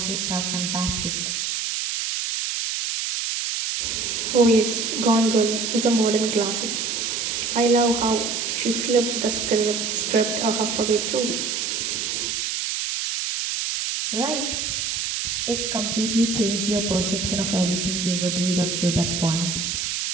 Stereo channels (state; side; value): noise; right; hiss, 1 dB below the sound